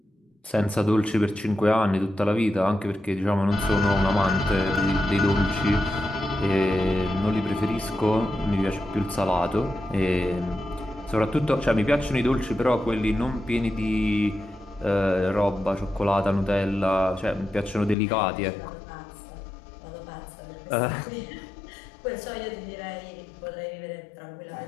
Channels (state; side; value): drops out; right; at 17.9 s